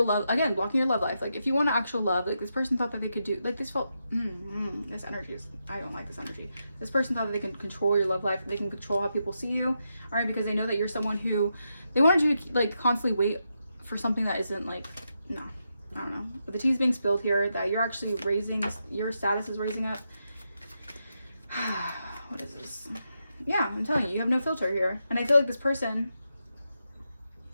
love, again, blocking your love life, like if you want actual love, like this person thought that they could do, like this felt, this energy is, I don't like this energy. This person thought that they can control your love life, they can control how people see you, all right, because they know that you're someone who, they wanted you to like constantly wait for something that isn't like, no, I don't know. But the tea's being spilled here, that you're actually your status is raising up. What is this? Yeah, I'm telling you have no filter here. And I feel like this person,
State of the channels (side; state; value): both; inverted; correlation -0.84